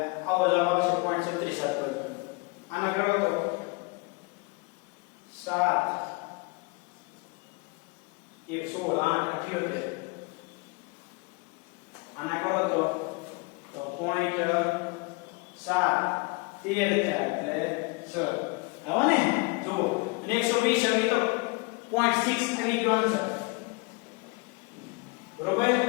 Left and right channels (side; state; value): right; quieter; 28.3 dB